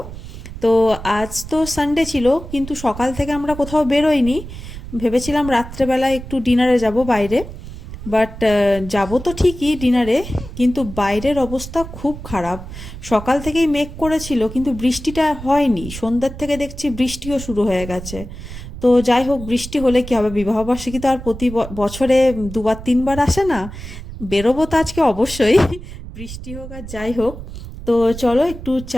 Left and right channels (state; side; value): noise; right; rumble, 12 dB below the sound